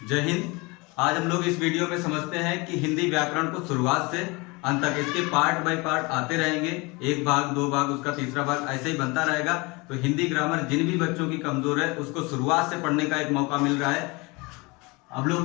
जय हिंद। आज हम लोग इस वीडियो में समझते हैं कि हिंदी व्याकरण को शुरुआत से अंत तक इसके पार्ट बाय पार्ट आते रहेंगे। एक भाग, दो भाग, उसका तीसरा भाग ऐसे ही बनता रहेगा। तो हिंदी ग्रामर जिन भी बच्चों की कमजोर है उसको शुरुआत से पढ़ने का एक मौका मिल रहा है। हम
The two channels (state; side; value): quieter; right; 26.2 dB